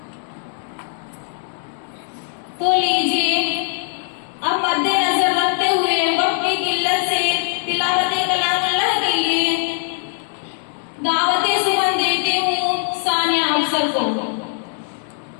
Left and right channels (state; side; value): silent; right; 62 dB below the other